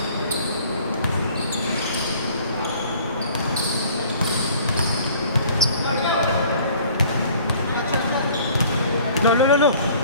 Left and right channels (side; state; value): both; inverted; correlation -0.52